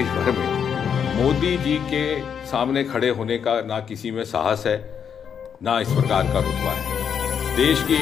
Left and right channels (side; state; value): right; quieter; 7.6 dB